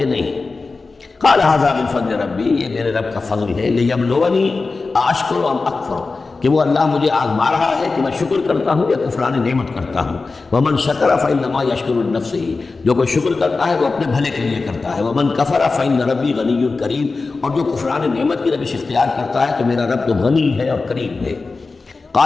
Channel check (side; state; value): right; quieter; 4.0 dB